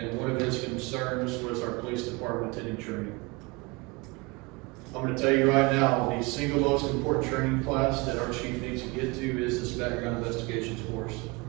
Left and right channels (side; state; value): left; quieter; 26.1 dB